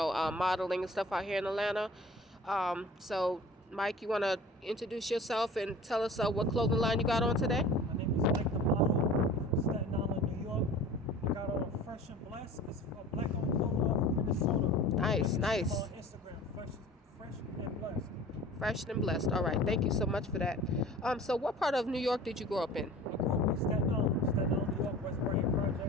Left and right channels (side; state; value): both; normal; correlation 0.42